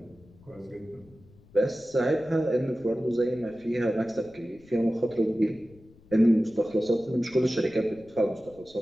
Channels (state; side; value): noise; left; rumble, 26 dB below the sound